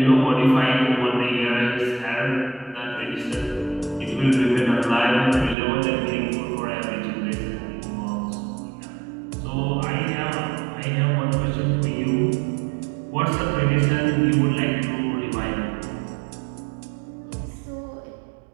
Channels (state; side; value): drops out; left; at 5.6 s